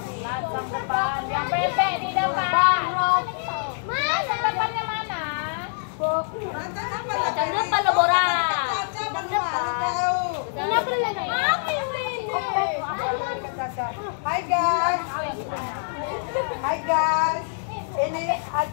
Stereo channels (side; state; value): right; silent; digital silence